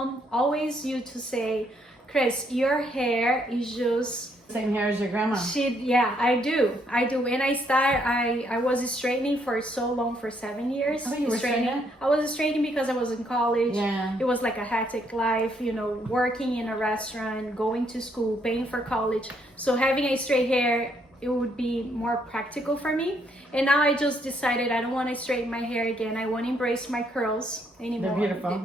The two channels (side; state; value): both; normal; correlation 0.72